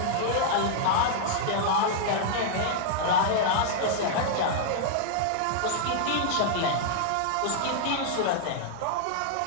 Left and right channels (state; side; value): different; both; correlation -0.01